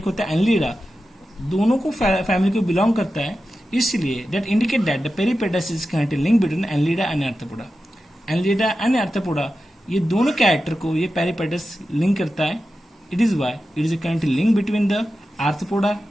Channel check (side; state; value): both; normal; correlation 0.92